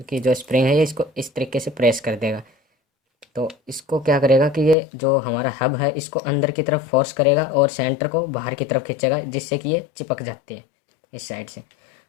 की जो स्प्रिंग है ये इसको इस तरीके से प्रेस कर देगा। तो इसको क्या करेगा कि ये जो हमारा हब है इसको अंदर की तरफ फोर्स करेगा और सेंटर को बाहर की तरफ खींचेगा, जिससे कि ये चिपक जाती है इस साइड से।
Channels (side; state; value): right; drops out; at 4.8 s